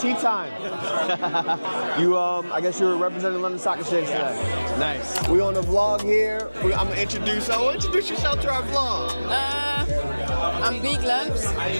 time. I guess you were representing London Stock Exchange today. Nice. We on the vlog here. I'm gonna introduce yourself to our vlog. I'm Big Lamps.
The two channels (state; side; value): inverted; both; correlation -1.00